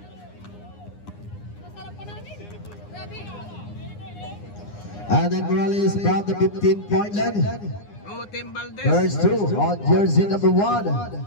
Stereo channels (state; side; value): late; right; 9.8 ms